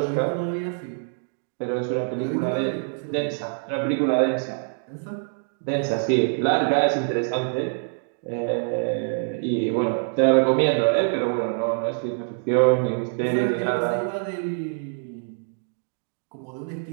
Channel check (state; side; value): silent; left; digital silence